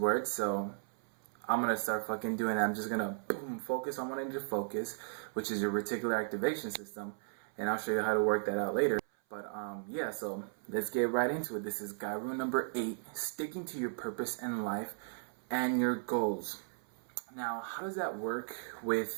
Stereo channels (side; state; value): left; silent; 54 dB below the other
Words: so I'm going to start fucking doing that. I'm just going to focus on what I need to focus, which is your reticular activation system, and I'll show you how to work that out later. But yeah, so let's get right into it. This is guy rule number 8, sticking to your purpose in life and your goals. Now, how does that work